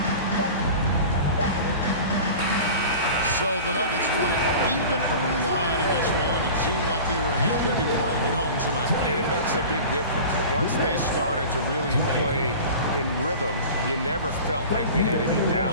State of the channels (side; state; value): both; inverted; correlation -0.37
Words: So the Nuggets won it even early on in this one. It seemed like they were happy to be playing at home tonight. And it makes a big difference. Once they started to really play in rhythm, you never felt like they had any